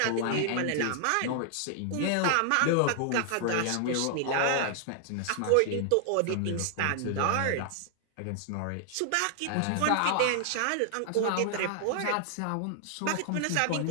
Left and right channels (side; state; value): both; different; correlation 0.00